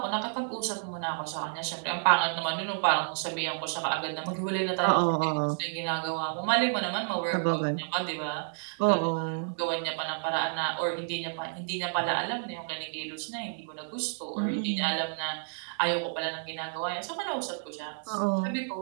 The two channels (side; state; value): left; silent; 58 dB below the other